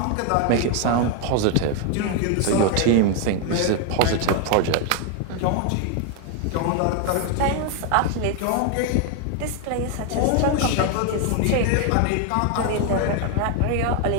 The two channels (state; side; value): different; both; correlation 0.01